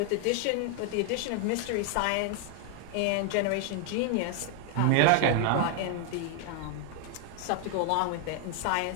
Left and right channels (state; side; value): different; both; correlation 0.00